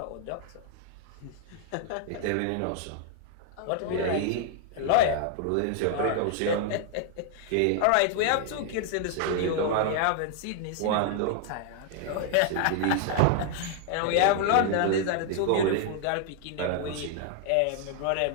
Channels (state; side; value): different; both; correlation 0.00